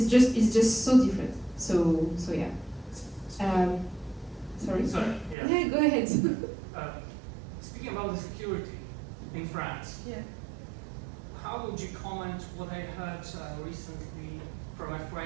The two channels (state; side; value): drops out; left; at 5.4 s